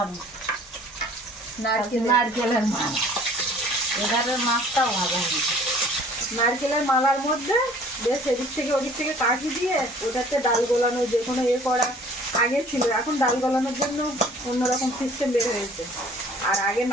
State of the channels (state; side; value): normal; both; correlation 0.52